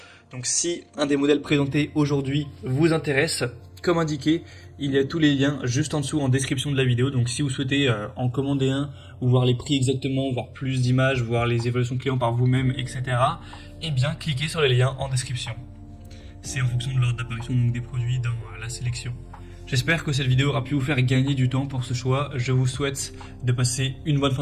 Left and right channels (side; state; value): both; identical; correlation 1.00